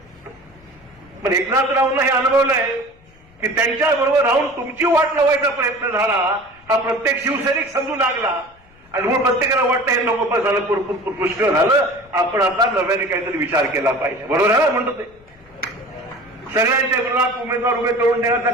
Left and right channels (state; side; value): noise; left; rumble, 28 dB below the sound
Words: पण एकनाथरावांना हे अनुभवलंय की त्यांच्याबरोबर राहून तुमची वाट लावायचा प्रयत्न झाला, हा प्रत्येक शिवसैनिक समजू लागला. आणि म्हणून प्रत्येकाला वाटतं हे नको पण झालं, पुष्कळ झालं, आपण आता नव्याने काहीतरी विचार केला पाहिजे. बरोबर आहे ना म्हणतो ते. सगळ्यांच्या विरोधात उमेदवार उभे करून देण्याचा